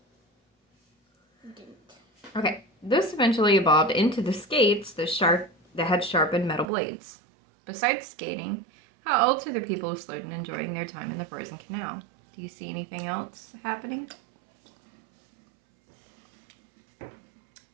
you didn't. Okay. This eventually evolved into the skates that had sharpened metal blades. Besides skating, how else are the people who slowed and enjoying their time in the frozen canal? Do you see anything else happening?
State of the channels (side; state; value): left; drops out; at 6.7 s